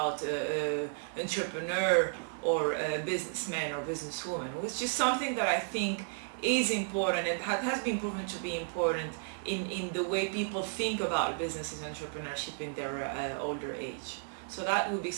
entrepreneur or businessman or businesswoman, which is something that I think is important and has been proven to be important in the way people think about business and entrepreneurship in their older age. So that would be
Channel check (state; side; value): silent; left; digital silence